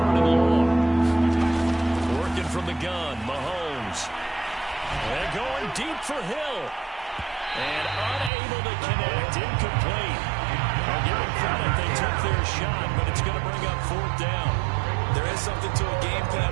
and long. Working from the gun, Mahomes. And going deep for Hill. And unable to connect, incomplete. I'll give them credit, they took their shot, but it's going to bring up 4th down. There is something to a game plan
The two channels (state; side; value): drops out; left; at 8.3 s